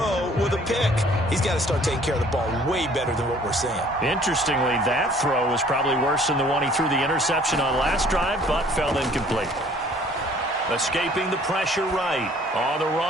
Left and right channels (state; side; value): normal; both; correlation 0.56